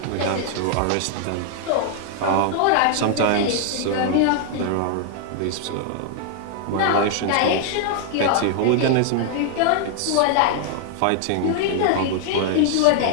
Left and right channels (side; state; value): both; different; correlation 0.00